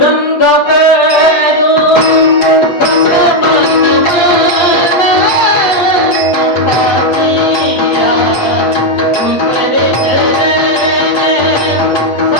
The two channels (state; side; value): late; right; 8.5 ms